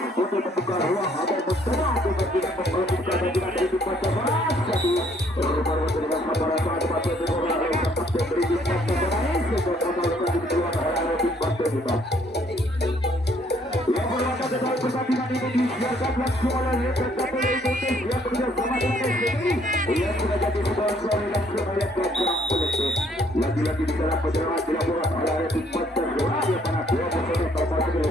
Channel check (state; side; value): normal; both; correlation 0.65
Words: untuk membuka ruang atau mencoba untuk tidak memperlukan pertandingan dari tim Pantai Satu. Baru dengan sabaran saat Pantai Hitam yang sempat diberi tim Pantai Hitam sehingga kembali di keluar anak-anak tim Pantai Hitam. Yang berlaku dalam pertandingan ini disiarkan langsung oleh Liga Indonesia yang bekerjasama dengan SCTV yang sudah jadi sponsor langsung oleh Gajah Politik. Lagi-lagi di dalam perjalanan dilakukan oleh tim Pantai yang mana dua personel terbaik di